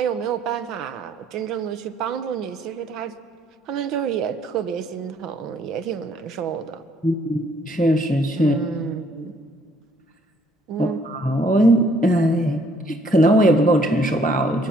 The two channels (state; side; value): normal; both; correlation 0.64